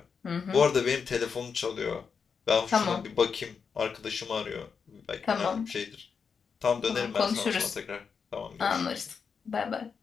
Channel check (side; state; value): right; quieter; 6.0 dB